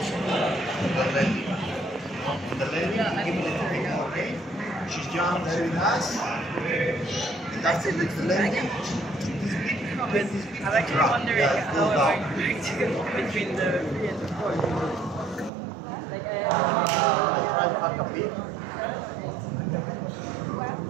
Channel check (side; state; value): left; drops out; at 15.5 s